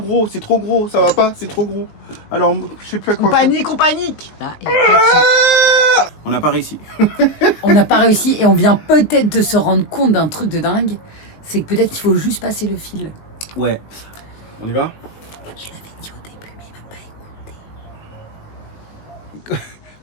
C'est trop gros. Ça va pas. C'est trop gros. Alors, je sais plus à quoi On faire. panique! Là, et après, On n'a pas réussi. on n'a pas réussi et on vient peut-être de se rendre compte d'un truc de dingue. C'est que peut-être qu'il faut juste passer le fil. Ouais. On y va? Je l'avais dit au début, mais il va pas écouter.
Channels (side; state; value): right; late; 19 ms